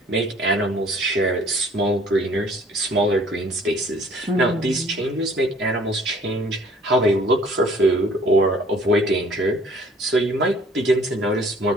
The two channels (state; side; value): normal; both; correlation 0.56